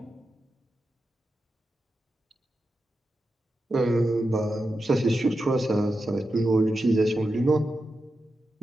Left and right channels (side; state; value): both; normal; correlation 0.89